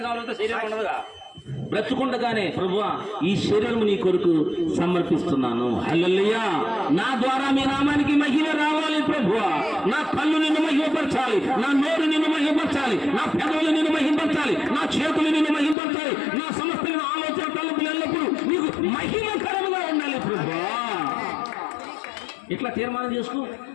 శరీరం ఉండదుగా, బ్రతుకుండగానే ప్రభువా ఈ శరీరం నీ కొరకు సమర్పిస్తున్నాను. హల్లెలూయా. నా ద్వారా మీ నామానికి మహిమ రావాలి ప్రభువా. నా కళ్ళు నిన్ను మహిమపరచాలి, నా నోరు నిన్ను మహిమపరచాలి, నా పెదవులు నిన్ను మహిమపరచాలి, నా చేతులు నిన్ను మహిమపరచాలి, నా సమస్తమైన ఆలోచన తలుపులు ఎల్లప్పుడూ నీకు మహిమకరముగా ఉండాలి ప్రభువా. ఇట్లా తీర్మానం చేసుకో.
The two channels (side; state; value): right; drops out; at 15.8 s